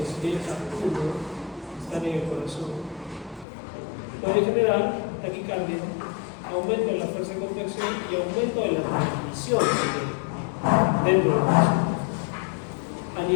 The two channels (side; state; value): right; drops out; at 3.5 s